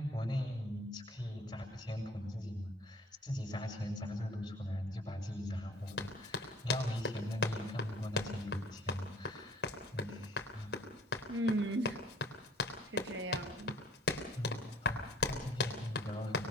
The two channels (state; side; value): normal; both; correlation 0.52